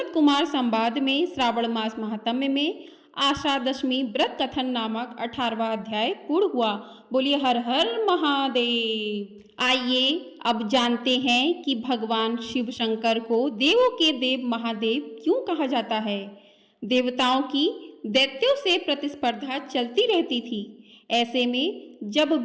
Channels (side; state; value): both; identical; correlation 1.00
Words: कुमार संवाद में श्रावण मास महात्म्य में आषाढ़ व्रत कथन नामक 18वां अध्याय पूर्ण हुआ। बोलिए हर हर महादेव। आइए अब जानते हैं कि भगवान शिव शंकर को देवों के देव महादेव क्यों कहा जाता है। देवताओं की दैत्यों से प्रतिस्पर्धा चलती रहती थी। ऐसे में जब